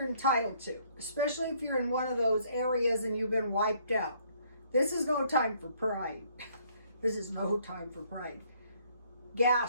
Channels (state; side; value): inverted; both; correlation -0.64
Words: entitled to, especially if you're in one of those areas and you've been wiped out. This is no time for pride. This is no time for pride.